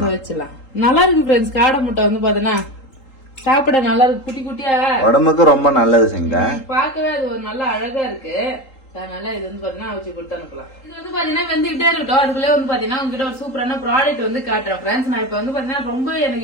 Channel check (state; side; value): late; right; 3.8 ms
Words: வச்சிடலாம். நல்லா இருக்கு ஃப்ரெண்ட்ஸ். காடை முட்டை வந்து பாத்தீங்கன்னா சாப்பிட நல்லா இருக்கு, குட்டி குட்டியா, உடம்புக்கு ரொம்ப நல்லது. செஞ்சா பாக்கவே அது ஒரு நல்ல அழகா இருக்கு. அதனால இது வந்து பாத்தீங்கன்னா வச்சு கொடுத்து அனுப்பலாம். இது வந்து பாத்தீங்கன்னா வெந்துகிட்டே இருக்கட்டும். அதுக்குள்ளே வந்து பாத்தீங்கன்னா உங்ககிட்ட ஒரு சூப்பரான ப்ராடக்ட் வந்து காட்டுறேன் ஃப்ரெண்ட்ஸ். நான் இப்ப வந்து பாத்தீங்கன்னா ரொம்ப